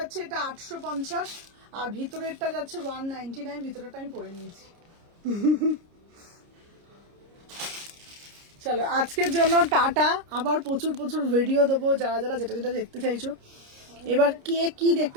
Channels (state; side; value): late; left; 29 ms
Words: এটা 850, আর ভিতরেরটা যাচ্ছে 199। ভিতরেরটা আমি পরে নিয়েছি। চলো, আজকের জন্য টাটা। আবার প্রচুর প্রচুর ভিডিও দেবো, যারা যারা যেটা যেটা দেখতে চাইছো। এবার কে কি